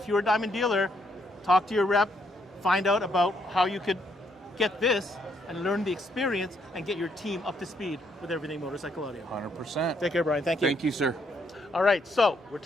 you're a Diamond dealer, talk to your rep, find out about how you could get this and learn the experience and get your team up to speed with everything motorcycle audio. 100%. Take care, Brian. Thank you. Thank you, sir. All right, so we're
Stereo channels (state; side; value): normal; both; correlation 0.73